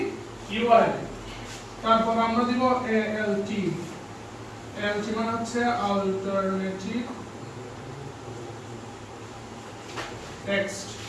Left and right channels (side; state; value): both; identical; correlation 1.00